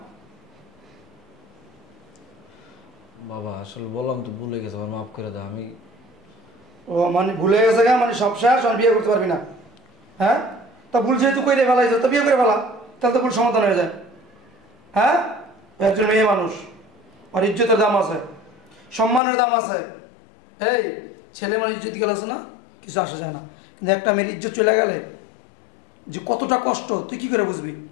বাবা আসলে বললাম তো, ভুলে গেছে, আমার মাফ করে দাও। আমি ও মানে ভুলে গেছে গা, মানে সব শেষ, আর বিয়ে করতে পারবি না? হ্যাঁ, তা ভুল যেহেতু করে ফেলাইছ, তো বিয়ে করে ফেলা, তাহলে তো ভুল সমাধান হয়ে যায়। হ্যাঁ, ও একজন মেয়ে মানুষ, আর ইজ্জতের দাম আছে, সম্মানের দাম আছে। এই ছেলে মানে ইজ্জত গেলে আছে না, কিছু আসা যায় না, কিন্তু একটা মেয়ের ইজ্জত চলে গেলে যে কতটা কষ্ট তুই কি করে বুঝবি?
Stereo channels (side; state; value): right; drops out; at 19.2 s